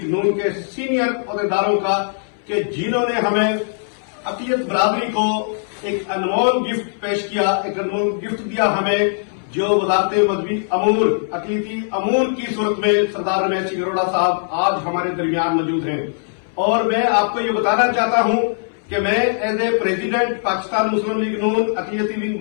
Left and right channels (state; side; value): silent; right; 62 dB below the other